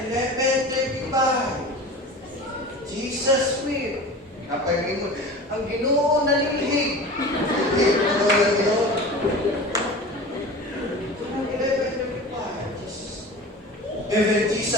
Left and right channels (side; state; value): both; normal; correlation 0.35